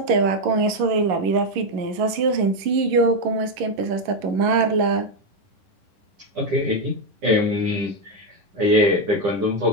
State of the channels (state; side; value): late; left; 11 ms